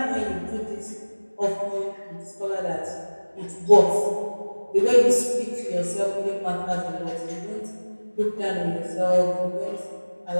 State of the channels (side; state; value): both; inverted; correlation -1.00